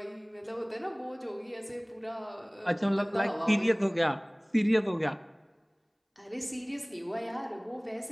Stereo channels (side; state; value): both; identical; correlation 1.00